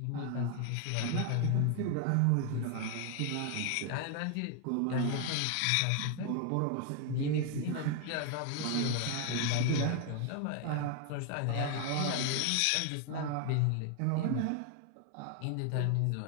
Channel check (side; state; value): both; different; correlation 0.00